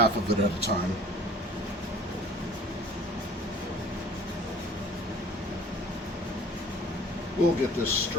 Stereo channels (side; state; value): both; normal; correlation 0.49